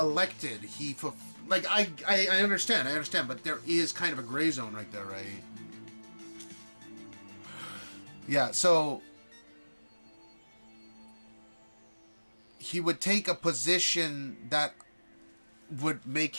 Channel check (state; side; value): inverted; both; correlation -1.00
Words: I understand, but there is kind of a gray zone right there, right? Yeah, so he would take a position that would make